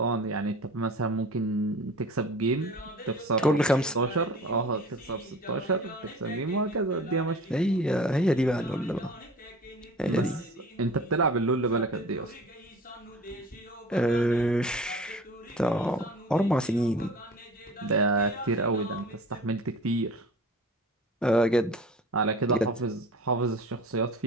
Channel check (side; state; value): both; normal; correlation 0.41